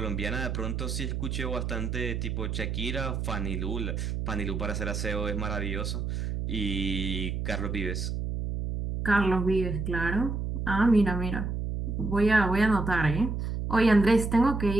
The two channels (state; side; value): noise; right; hum, 2 dB below the sound